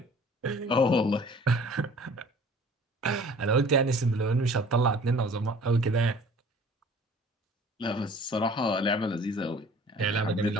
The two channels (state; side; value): normal; both; correlation 0.50